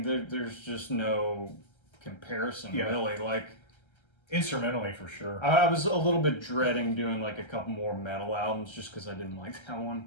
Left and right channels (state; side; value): late; right; 1.3 ms